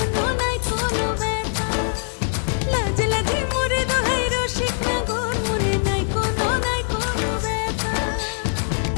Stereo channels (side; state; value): right; silent; digital silence